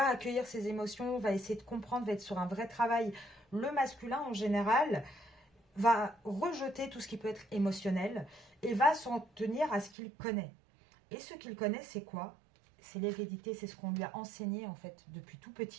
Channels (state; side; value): drops out; left; at 9.9 s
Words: accueillir ses émotions, va essayer de comprendre, va être sur un vrai travail. Le masculin, en général, va rejeter tout ce qui peut être émotionnel et va s'en tenir à ce qu'il connaît. Et ce qu'il connaît, c'est quoi? C'est l'hérédité, c'est ce qu'on lui a enseigné en fait depuis tout